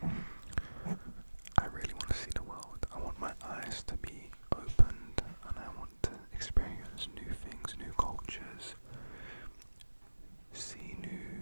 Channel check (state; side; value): inverted; both; correlation -1.00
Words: I really want to see the world. I want my eyes to be opened, and I want to experience new things, new cultures, see